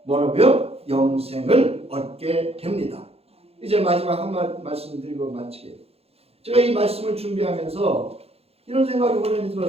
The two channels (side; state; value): left; late; 0.29 ms